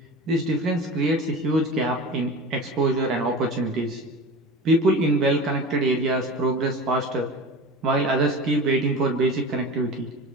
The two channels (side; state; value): both; normal; correlation 0.32